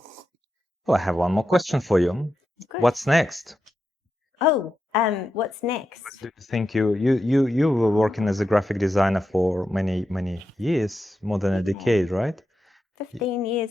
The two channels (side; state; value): both; normal; correlation 0.88